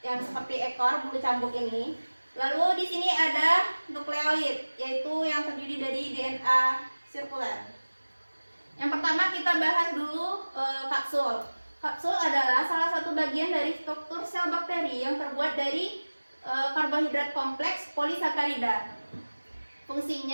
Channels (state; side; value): inverted; both; correlation -1.00